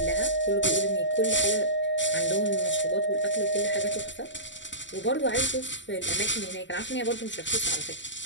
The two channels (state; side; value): late; right; 0.54 ms